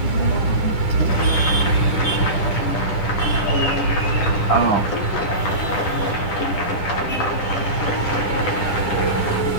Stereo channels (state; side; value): late; right; 9.8 ms